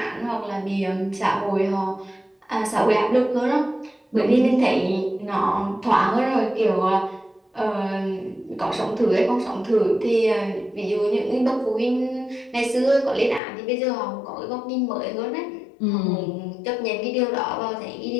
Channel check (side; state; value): right; drops out; at 13.4 s